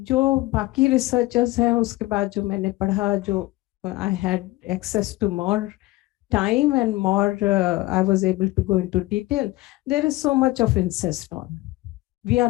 बाकी रिसर्चर्स हैं, उसके बाद जो मैंने पढ़ा, जो I had access to more time and more, I was able to go into detail. There is so much of incest on. We are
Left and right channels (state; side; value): quieter; right; 19.4 dB